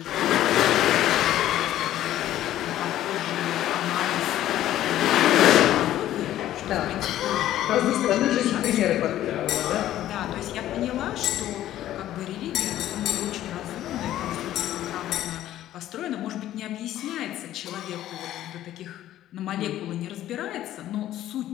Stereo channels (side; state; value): right; quieter; 13.1 dB